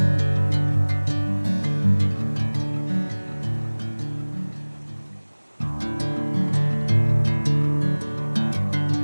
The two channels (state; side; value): inverted; both; correlation -1.00